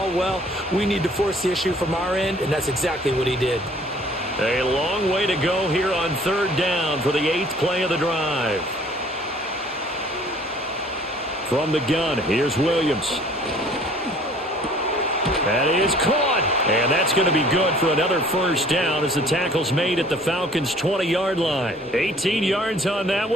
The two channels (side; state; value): both; normal; correlation 0.54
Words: well. We need to force the issue from our end, and that's exactly what he did. A long way to go here on 3rd down for the 8th play of the drive. From the gun, here's Williams. That is caught, and that's going to be good for another 1st down as the tackle's made at the Falcons' 20-yard line. 18 yards on that